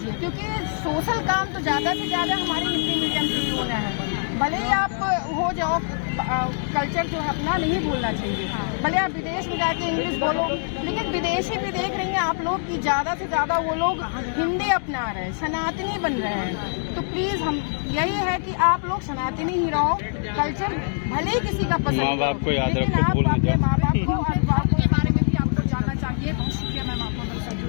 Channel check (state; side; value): silent; right; digital silence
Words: क्योंकि सोशल काम तो ज्यादा से ज्यादा हमारे हिंदी मीडियम से ही होना है। भले ही आप हो जाओ, कल्चर जो है अपना नहीं भूलना चाहिए। भले आप विदेश में जाके इंग्लिश बोलो, लेकिन विदेशी भी देख रहे हैं आप लोग कि ज्यादा से ज्यादा वो लोग हिंदी अपना रहे हैं, सनातनी बन रहे हैं। तो प्लीज हम यही है कि आप लोग सनातनी ही रहो, कल्चर भले ही किसी का पसंद, माँ बाप को याद लेकिन रखो, आप भूल मत अपने जाओ। माँ बाप को और अभिभावकों के बारे में भी आपको जानना चाहिए। बहुत शुक्रिया मैम आपका।